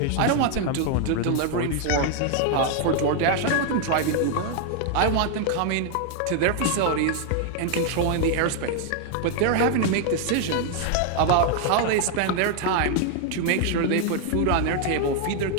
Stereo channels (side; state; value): both; different; correlation 0.00